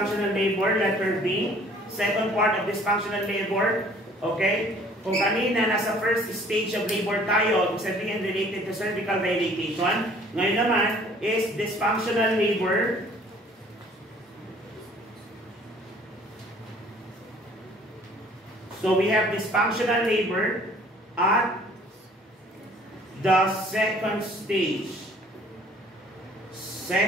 labor, letter B. Second part of dysfunctional labor, okay? Kung kanina nasa first stage of labor tayo, ibig sabihin related to cervical dilatation. Ngayon naman is dysfunctional labor. So we have dysfunctional labor at the second stage.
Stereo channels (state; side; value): normal; both; correlation 0.55